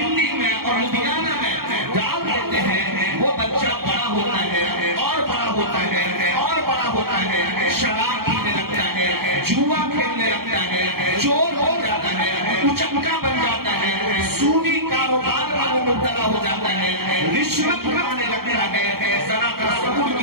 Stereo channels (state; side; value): late; left; 0.94 ms